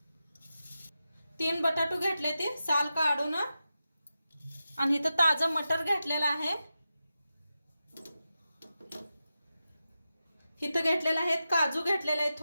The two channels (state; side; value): inverted; both; correlation -0.91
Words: 3 बटाटू घेतले ते साल काढून आणि इथं ताजा मटर घेतलेला आहे। इथं घेतलेला आहे काजू घेतलेले आहेत,